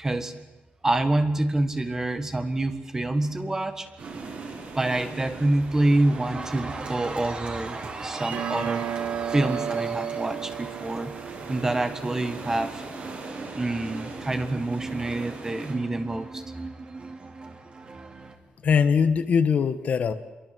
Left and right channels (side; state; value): both; normal; correlation 0.88